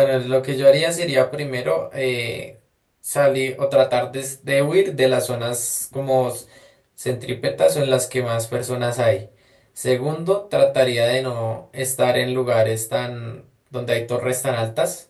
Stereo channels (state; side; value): identical; both; correlation 1.00